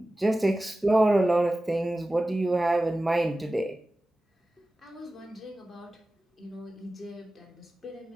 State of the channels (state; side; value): normal; both; correlation 0.96